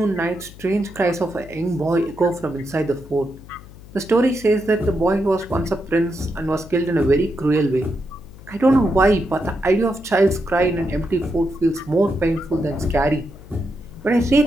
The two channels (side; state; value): left; noise; hum, 19 dB below the sound